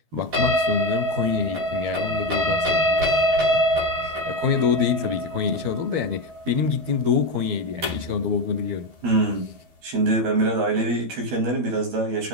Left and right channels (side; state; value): left; late; 12 ms